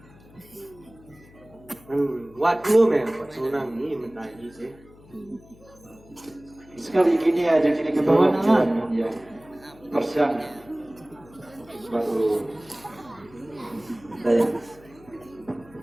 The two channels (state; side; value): noise; left; hum, 24 dB below the sound